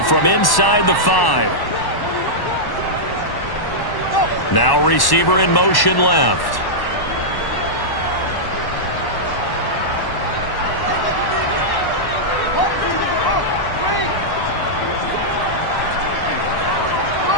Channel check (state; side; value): late; right; 1.1 ms